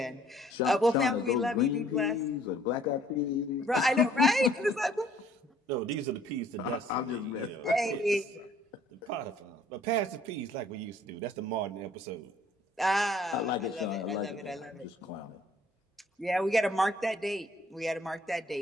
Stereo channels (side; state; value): both; normal; correlation 0.59